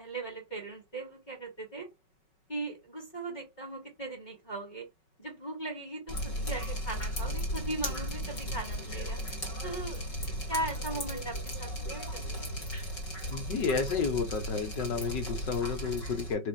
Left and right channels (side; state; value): right; late; 5.4 ms